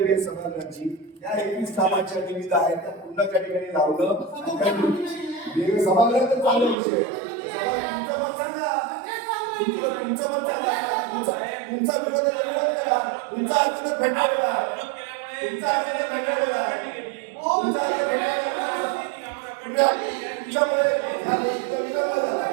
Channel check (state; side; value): drops out; left; at 6.8 s